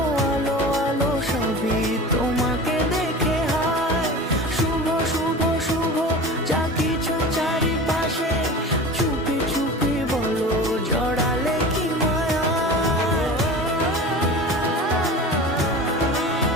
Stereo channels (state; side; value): normal; both; correlation 0.34